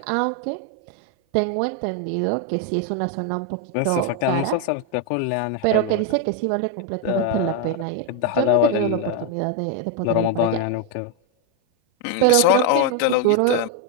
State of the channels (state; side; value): different; both; correlation 0.02